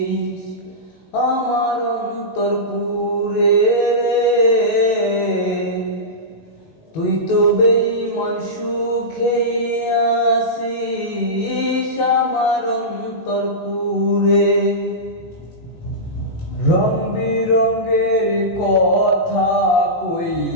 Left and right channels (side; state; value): right; late; 18 ms